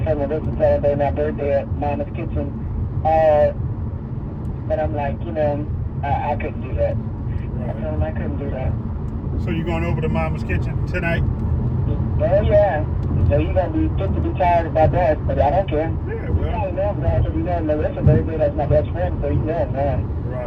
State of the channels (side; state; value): both; identical; correlation 1.00